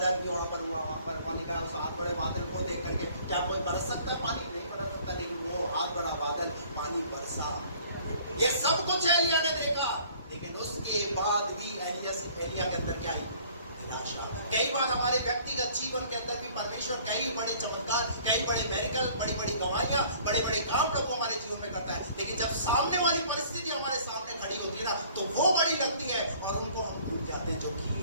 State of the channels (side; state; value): both; inverted; correlation -0.54